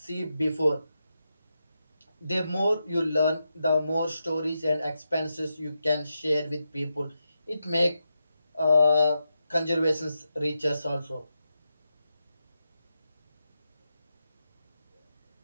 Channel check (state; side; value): inverted; both; correlation -0.87